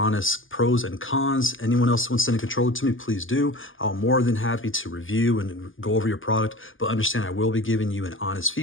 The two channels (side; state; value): right; late; 0.58 ms